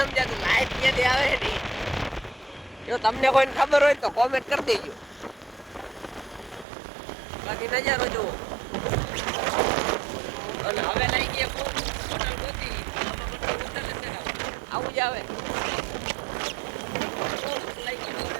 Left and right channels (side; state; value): left; drops out; at 6.7 s